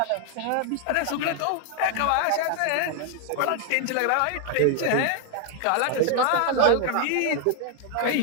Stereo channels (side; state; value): both; different; correlation 0.00